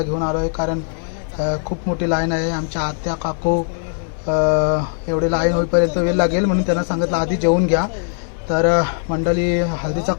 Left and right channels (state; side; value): silent; right; 66 dB below the other